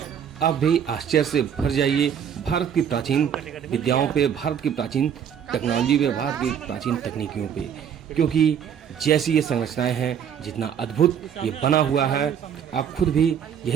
आप भी आश्चर्य से भर जाइए भारत की प्राचीन विद्याओं पे, भारत की प्राचीन टेक्नोलॉजी पे, भारत की प्राचीन तकनीकियों पे, क्योंकि जैसी ये संरचनाएं हैं, जितना अद्भुत ये बना हुआ है, आप खुद भी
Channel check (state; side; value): quieter; left; 8.4 dB